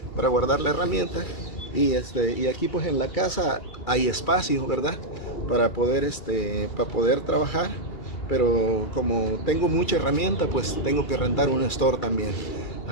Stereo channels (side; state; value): right; late; 2.4 ms